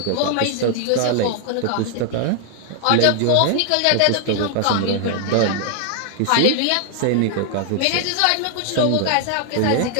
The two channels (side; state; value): both; different; correlation 0.00